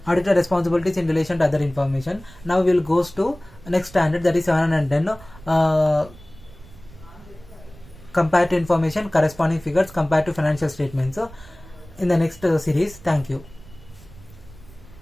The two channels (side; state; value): right; noise; rumble, 21 dB below the sound